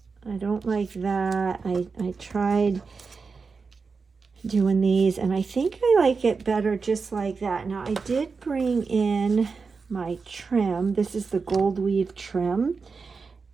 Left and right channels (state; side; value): quieter; left; 4.8 dB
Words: don't like that. I tried doing these, and I think I like it better just like that. Now, I did bring in my trim. This is the gold weave trim,